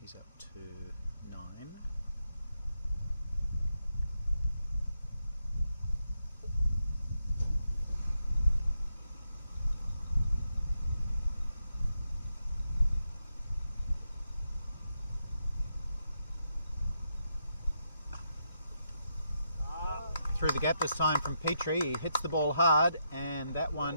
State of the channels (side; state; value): both; inverted; correlation -0.82